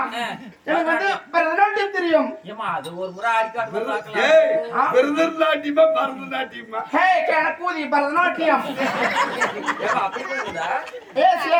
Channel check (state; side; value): identical; both; correlation 1.00